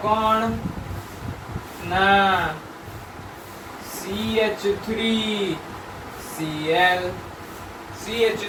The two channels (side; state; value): both; identical; correlation 1.00